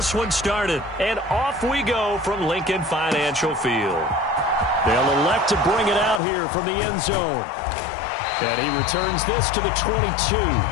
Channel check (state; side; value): drops out; right; at 6.2 s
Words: one started. And off we go from Lincoln Financial Field. They'll elect to bring it out here from the end zone. And he returns this to the 22.